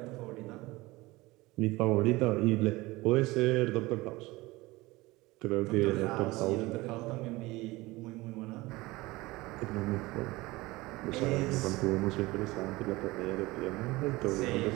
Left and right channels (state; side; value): quieter; left; 20.8 dB